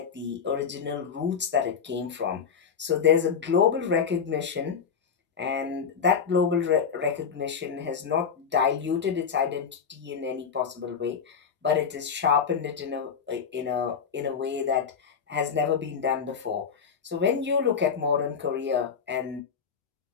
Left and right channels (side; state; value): right; quieter; 6.6 dB